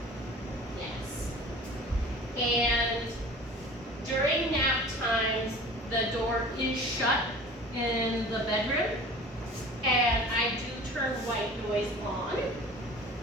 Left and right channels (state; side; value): normal; both; correlation 0.42